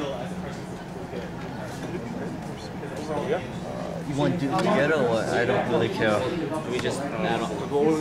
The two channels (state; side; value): identical; both; correlation 1.00